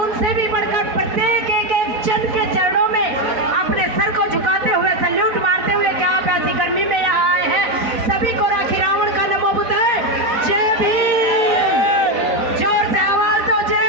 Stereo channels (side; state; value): left; late; 4.0 ms